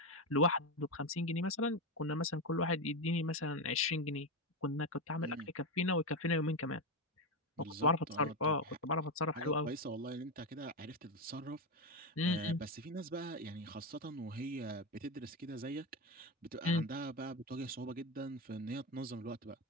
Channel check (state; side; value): normal; both; correlation 0.12